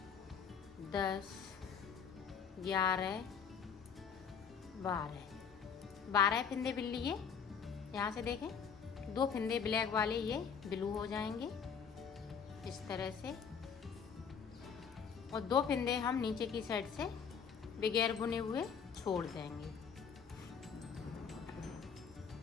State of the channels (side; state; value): right; quieter; 6.7 dB